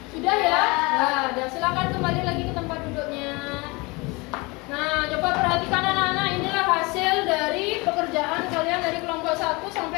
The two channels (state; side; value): quieter; right; 25.8 dB